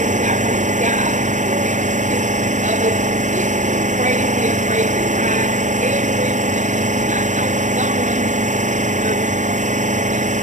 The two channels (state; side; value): late; left; 0.35 ms